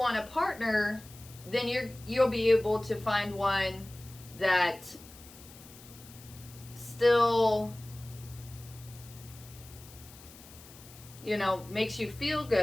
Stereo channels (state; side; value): noise; left; hiss, 20 dB below the sound